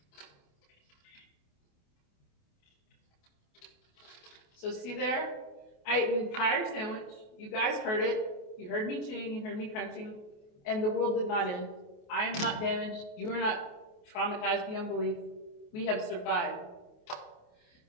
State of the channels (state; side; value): late; right; 28 ms